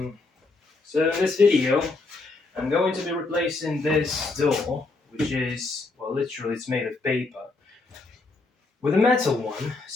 so in this video, I'm going to be replacing this door, which is, well, literally it's made of paper, with a metal one.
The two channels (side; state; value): right; quieter; 3.5 dB